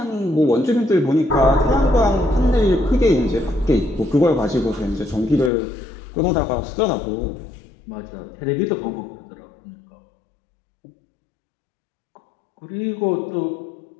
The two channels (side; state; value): right; drops out; at 5.5 s